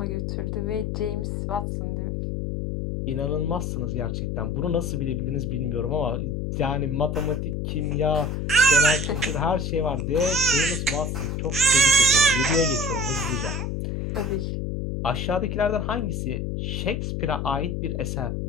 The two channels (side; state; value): left; noise; hum, 2 dB below the sound